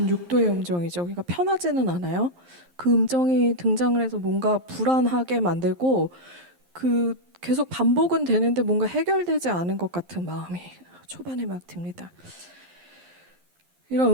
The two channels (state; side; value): late; left; 11 ms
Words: 6도의 음정이죠. 그러니까 편하지는 않아요. 그 음정이 등장을 해서 뭔가 불안하게 만들고 그 계속 반복은 되는데 뭔가 해결되지 않은 것 같은 마음이 초반에 막 듭니다. 이런